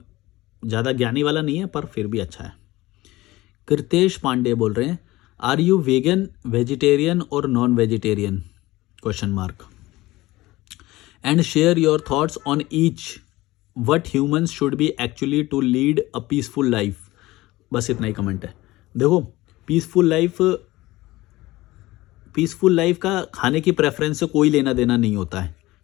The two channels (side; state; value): right; quieter; 18.7 dB